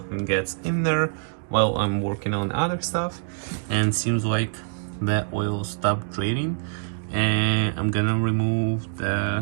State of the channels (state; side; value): silent; left; digital silence